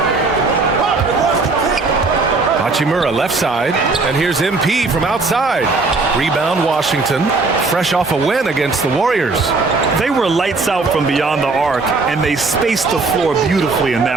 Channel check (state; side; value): quieter; left; 3.8 dB